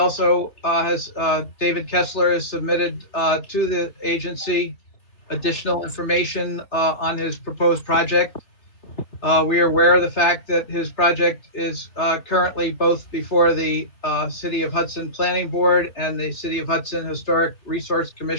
David Kessler has submitted to the agency additional information on his proposed project. We are aware of the fact that his project is currently both before the City of Hudson Planning Board and the City of Hudson Historic Resource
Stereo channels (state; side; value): late; right; 3.5 ms